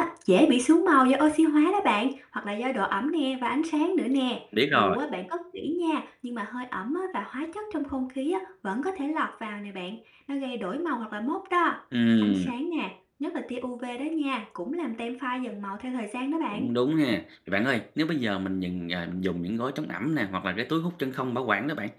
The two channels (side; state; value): both; identical; correlation 1.00